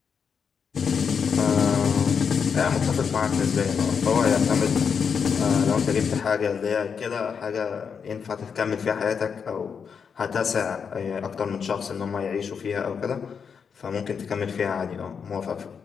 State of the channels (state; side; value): quieter; right; 6.4 dB